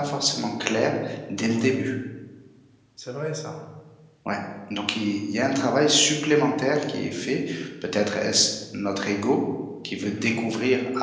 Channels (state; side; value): identical; both; correlation 1.00